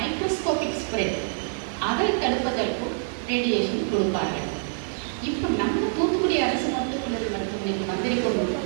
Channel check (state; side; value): silent; left; 61 dB below the other